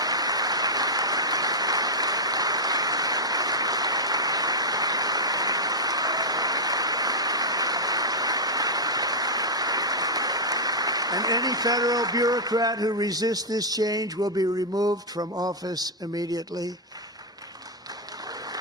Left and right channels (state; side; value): normal; both; correlation -0.05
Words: And any federal bureaucrat who resists this change will be removed from office immediately.